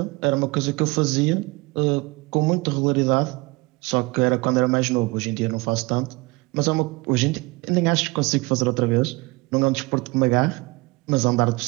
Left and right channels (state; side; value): quieter; left; 24.2 dB